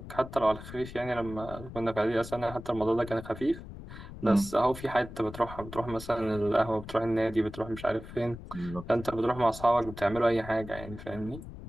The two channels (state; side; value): noise; left; rumble, 13 dB below the sound